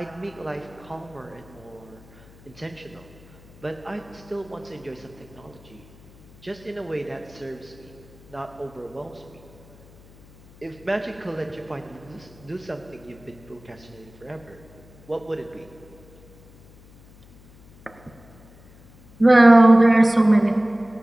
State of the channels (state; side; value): noise; left; hum, 24 dB below the sound